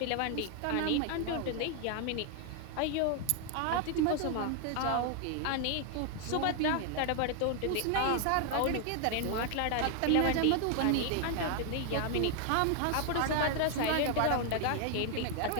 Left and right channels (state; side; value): different; both; correlation 0.00